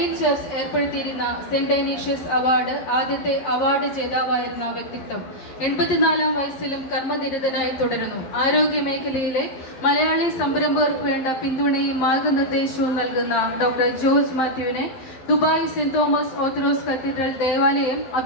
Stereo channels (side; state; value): right; late; 12 ms